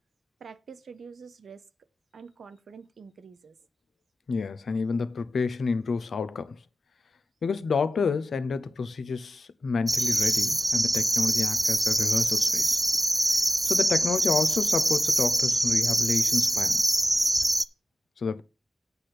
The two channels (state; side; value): normal; both; correlation 0.92